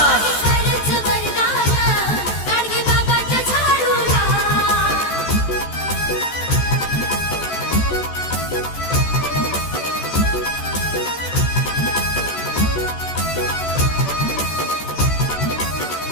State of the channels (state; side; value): late; right; 14 ms